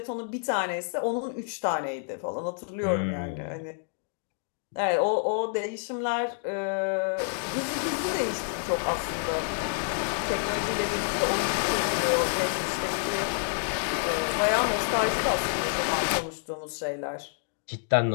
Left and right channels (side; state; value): right; silent; digital silence